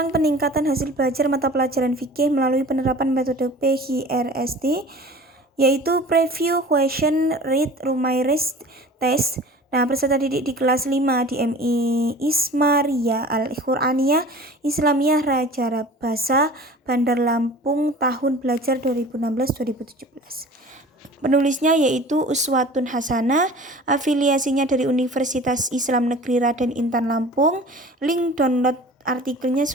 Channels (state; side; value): normal; both; correlation 0.42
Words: peningkatan hasil belajar mata pelajaran fikih melalui penerapan metode PHRST, yaitu Preview Question Read Rumaires Test. Nah, peserta didik di kelas 5 di MI Ismaria Al-Quraniyah Islamiyah Raja Rabasa, Bandar Lampung, tahun belajar 2016-2017. Penulisnya yaitu Uswatun Hasanah, afiliasinya dari Universitas Islam Negeri Raden Intan Lampung. Link download artikelnya